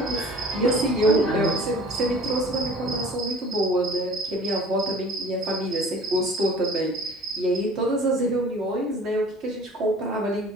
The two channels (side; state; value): both; normal; correlation 0.47